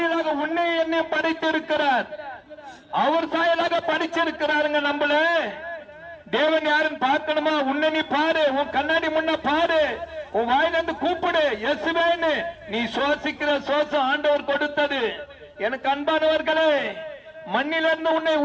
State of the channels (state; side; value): identical; both; correlation 1.00